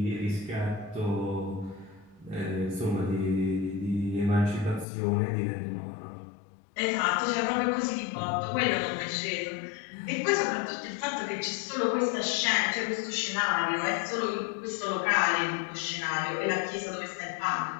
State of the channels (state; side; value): drops out; right; at 4.9 s